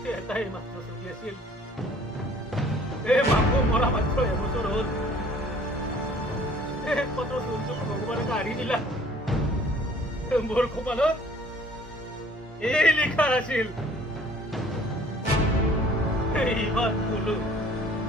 এটাই মাত্ৰ চলি আছিল এই মাকো মৰা মাত্ৰ এবছৰ হ'ল একমাত্ৰ চলটো ভগৱানে কাঢ়ি দিলা মোৰ কপালত এই লিখা আছিল ইমান কলো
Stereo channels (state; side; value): normal; both; correlation 0.54